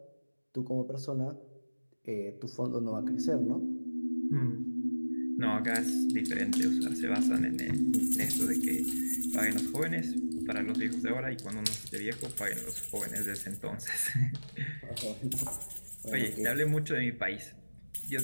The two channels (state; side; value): inverted; both; correlation -1.00